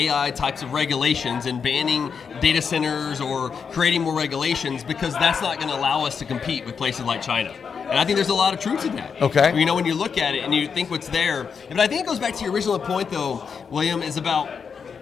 types of regulations and banning data centers or creating more regulations, because that's not going to allow us to compete with places like China. And I think there's a lot of truth to that. Okay. When you look at it and you think what's there. But I think it goes back to your original point, though, William, is about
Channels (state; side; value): quieter; right; 6.2 dB